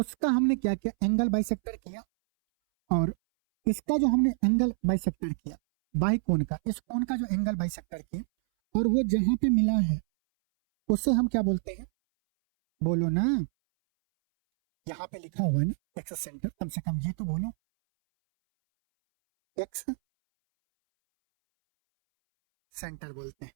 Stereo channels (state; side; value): silent; left; 60 dB below the other